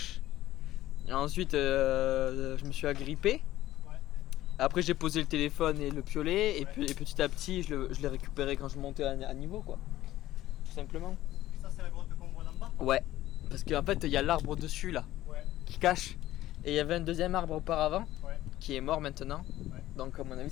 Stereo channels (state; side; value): quieter; right; 14.8 dB